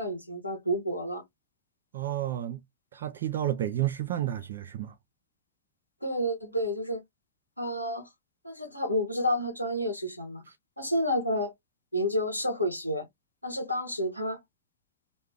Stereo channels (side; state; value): both; inverted; correlation -0.47